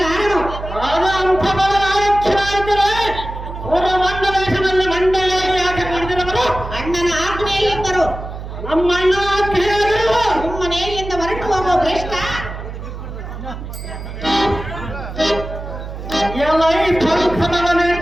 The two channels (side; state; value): right; noise; hum, 9 dB below the sound